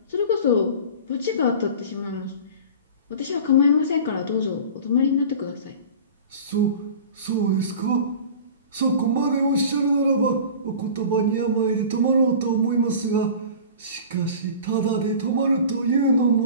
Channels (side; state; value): both; inverted; correlation -0.39